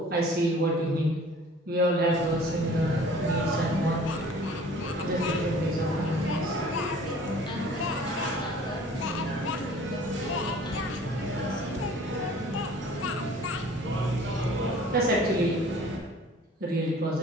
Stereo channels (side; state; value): both; normal; correlation 0.49